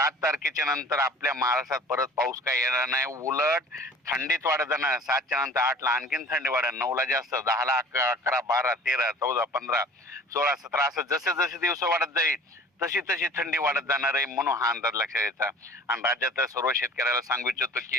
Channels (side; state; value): both; normal; correlation 0.45